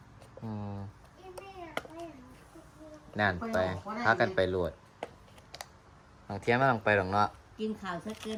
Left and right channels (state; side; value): identical; both; correlation 1.00